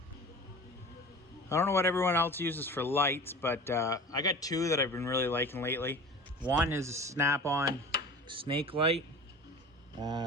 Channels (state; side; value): normal; both; correlation 0.37